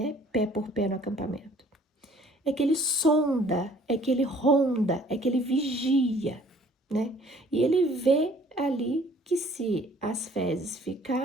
pé por pé no acampamento. É que ele sonda, é que ele ronda, é que ele vigia, né? E ele vê ali que se as fezes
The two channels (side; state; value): both; normal; correlation 0.56